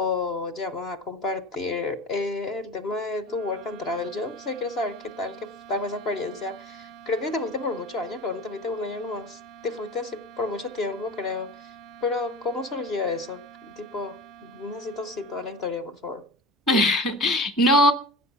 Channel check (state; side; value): normal; both; correlation 0.34